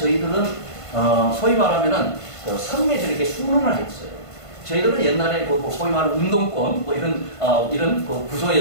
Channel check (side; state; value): right; late; 1.5 ms